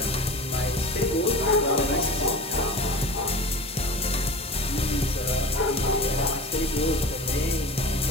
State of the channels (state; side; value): normal; both; correlation 0.34